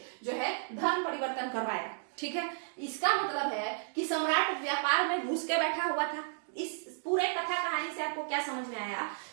जो है धर्म परिवर्तन करवाया। ठीक है, इसका मतलब है कि सम्राट व्यापार में घुस के बैठा हुआ था। इस पूरे कथा कहानी से आपको क्या समझ में आया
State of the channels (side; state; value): left; silent; digital silence